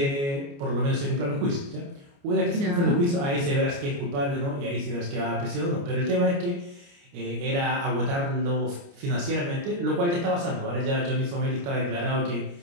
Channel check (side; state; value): left; late; 29 ms